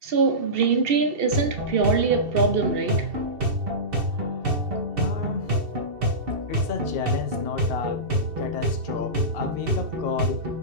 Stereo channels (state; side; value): late; left; 2.7 ms